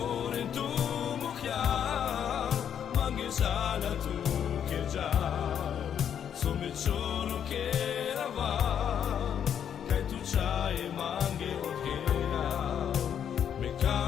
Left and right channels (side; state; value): right; quieter; 8.8 dB